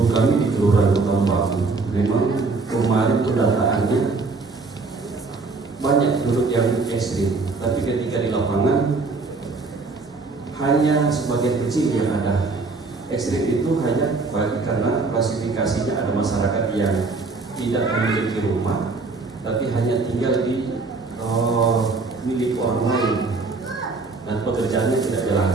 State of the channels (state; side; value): quieter; left; 3.9 dB